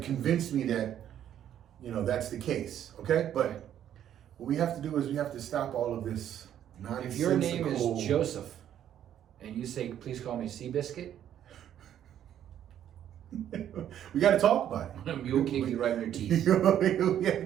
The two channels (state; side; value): quieter; left; 10.5 dB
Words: convince me that that's the case. Okay? But what we have to do is we have to stop all of this nonsensical. If your name is Joseph, and you say, please call me Seabiscuit, we got to talk about it. a mule kick you right in your teeth. We